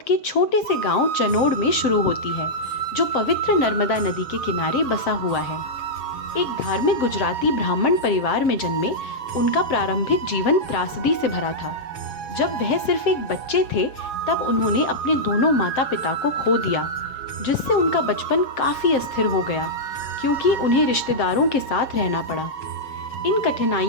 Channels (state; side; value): late; right; 7.6 ms